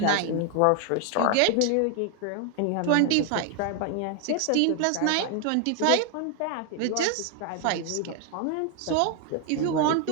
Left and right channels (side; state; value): both; different; correlation 0.00